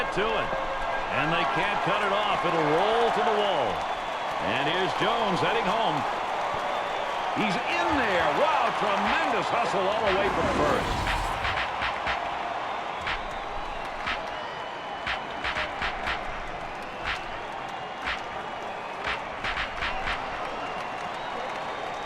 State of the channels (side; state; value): both; identical; correlation 1.00